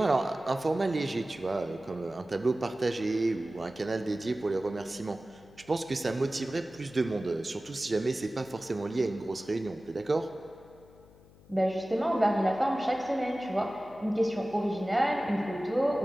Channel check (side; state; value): left; noise; hum, 25 dB below the sound